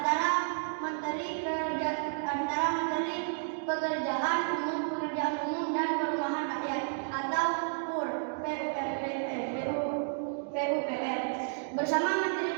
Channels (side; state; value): left; silent; digital silence